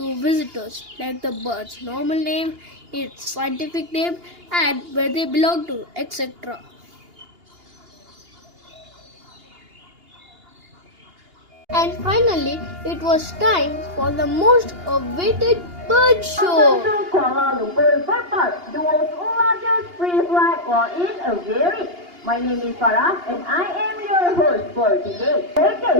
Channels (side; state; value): left; late; 2.8 ms